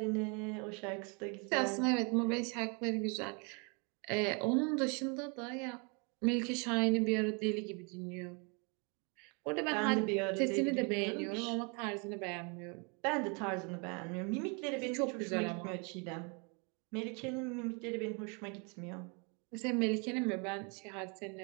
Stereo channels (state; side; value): quieter; left; 33.7 dB